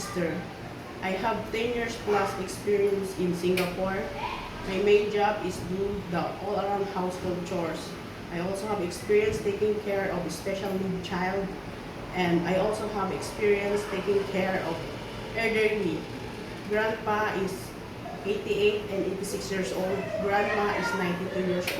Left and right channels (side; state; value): both; identical; correlation 1.00